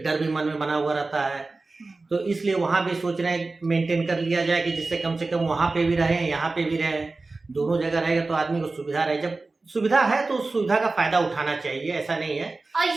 डर भी मन में बना हुआ रहता है। तो इसलिए वहां भी सोच रहे हैं मेंटेन कर लिया जाए कि जिससे कम से कम वहां पे भी रहे, यहाँ पे भी रहे, दोनों जगह रहेगा तो आदमी को सुविधा रहे। जब सुविधा है तो उस सुविधा का फायदा उठाना चाहिए, ऐसा नहीं है। और ये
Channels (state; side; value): quieter; left; 3.5 dB